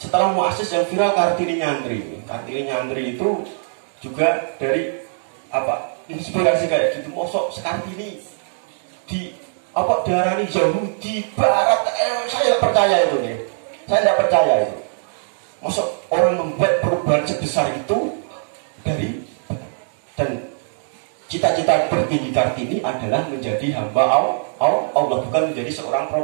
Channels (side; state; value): left; silent; digital silence